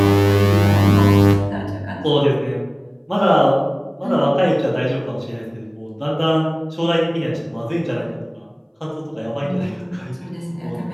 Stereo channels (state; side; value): identical; both; correlation 1.00